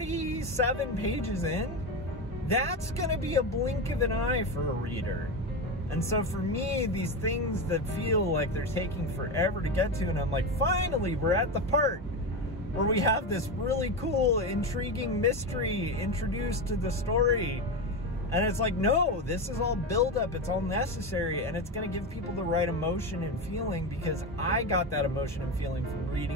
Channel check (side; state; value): both; normal; correlation 0.17